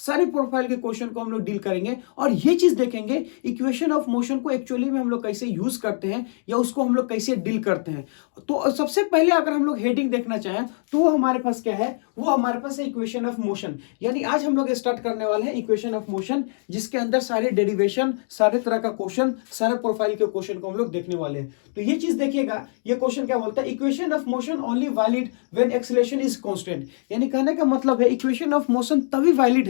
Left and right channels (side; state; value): right; silent; digital silence